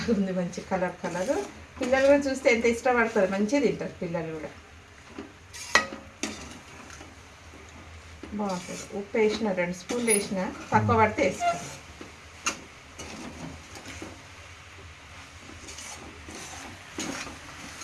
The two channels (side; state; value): both; identical; correlation 1.00